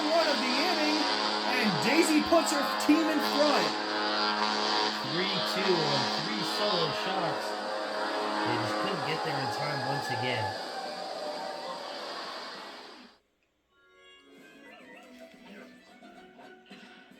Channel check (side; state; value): both; identical; correlation 1.00